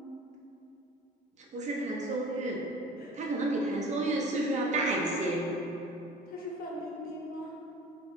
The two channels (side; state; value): both; normal; correlation 0.43